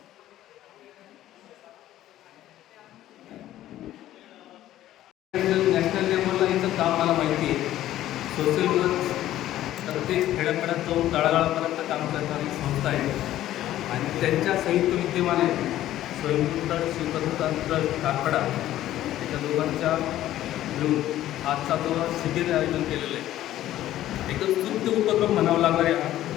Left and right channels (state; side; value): quieter; right; 13.5 dB